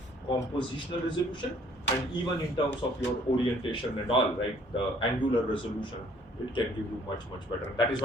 compositional resolution, and even in terms of your orientation and all, right, the angular resolution, it can give you much better. And that is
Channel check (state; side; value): normal; both; correlation 0.60